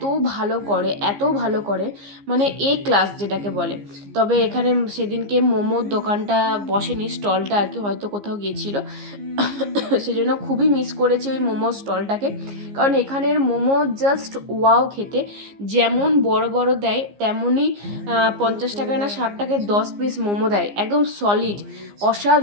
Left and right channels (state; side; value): late; left; 15 ms